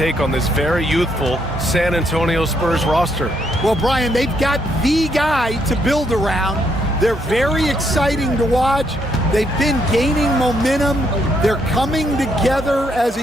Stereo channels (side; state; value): both; normal; correlation 0.74